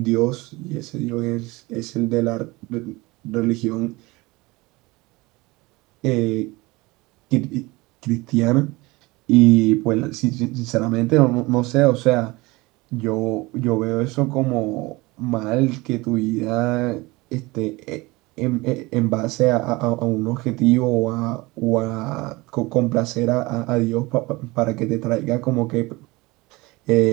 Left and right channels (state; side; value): quieter; left; 22.6 dB